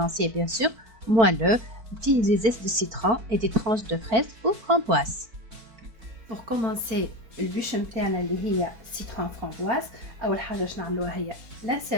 bien sûr, moelleux, des zestes de citron et des tranches de fraises ou framboises. Pour commencer البûche نتاعنا اللي هي citron framboise أول حاجة باش نعملوها هي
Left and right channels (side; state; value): left; late; 4.5 ms